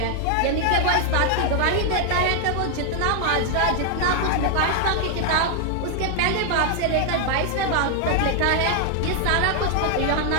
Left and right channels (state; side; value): different; both; correlation 0.00